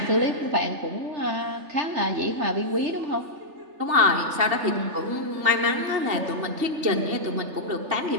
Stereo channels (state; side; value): late; left; 3.3 ms